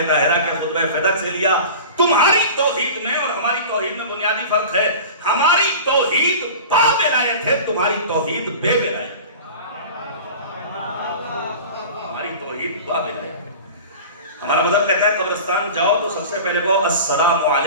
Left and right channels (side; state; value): both; inverted; correlation -0.36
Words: طاہرہ کے خطبہ فدق سے لیا. تمہاری توحید میں اور ہماری توحید میں بنیادی فرق ہے. ہماری توحید با ولایت ہے، تمہاری توحید بے ولایت. ہمارا مذہب کہتا ہے قبرستان جاؤ تو سب سے پہلے کہو السلام